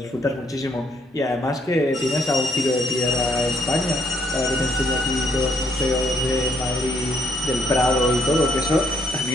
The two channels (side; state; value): both; normal; correlation 0.70